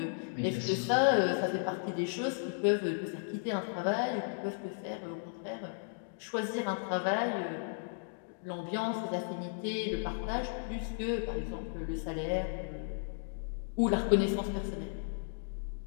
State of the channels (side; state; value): right; silent; digital silence